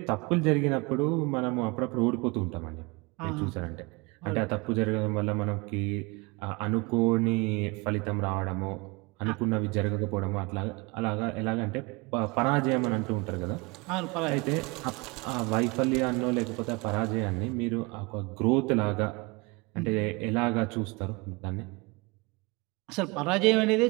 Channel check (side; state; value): left; quieter; 27.0 dB